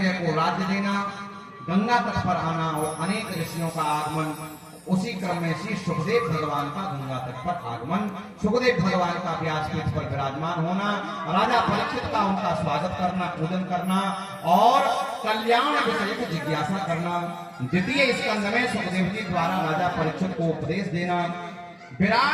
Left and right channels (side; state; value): both; identical; correlation 1.00